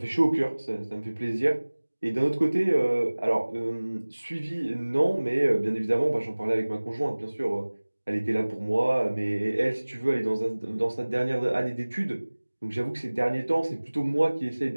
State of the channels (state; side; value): inverted; both; correlation -1.00